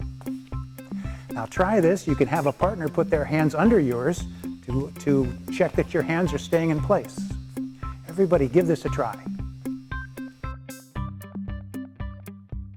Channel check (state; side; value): identical; both; correlation 1.00